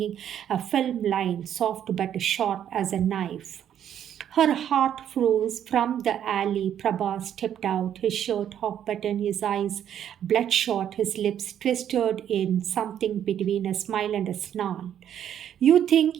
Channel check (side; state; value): left; quieter; 9.9 dB